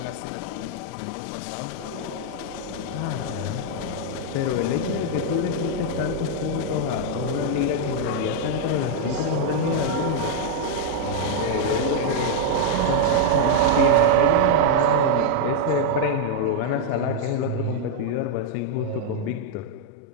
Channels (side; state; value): both; different; correlation -0.01